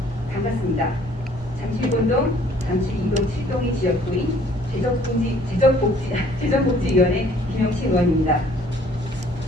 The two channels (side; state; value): both; normal; correlation 0.58